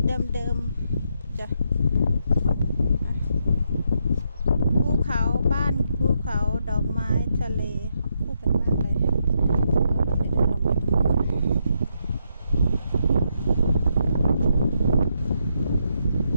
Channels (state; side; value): inverted; both; correlation -0.79